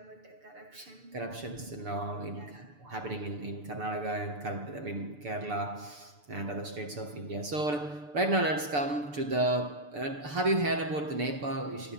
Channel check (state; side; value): late; left; 6.8 ms